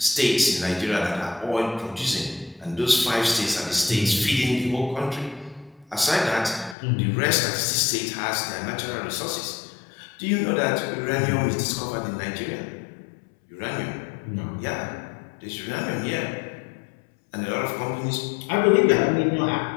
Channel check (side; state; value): right; drops out; at 6.8 s